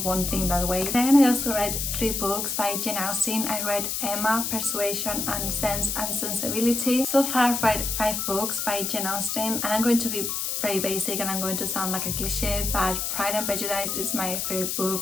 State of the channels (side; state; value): left; noise; hiss, 1 dB below the sound